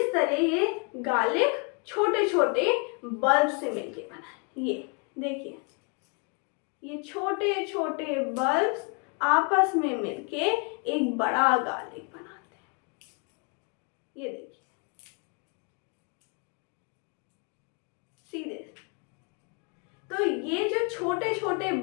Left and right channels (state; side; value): quieter; right; 36.1 dB